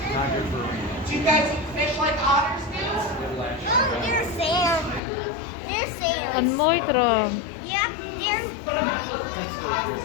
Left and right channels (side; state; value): right; drops out; at 5.0 s